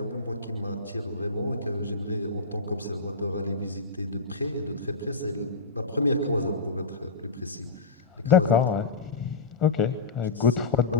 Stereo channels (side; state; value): right; quieter; 3.9 dB